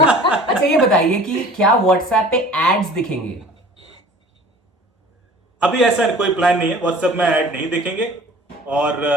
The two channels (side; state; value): both; normal; correlation 0.46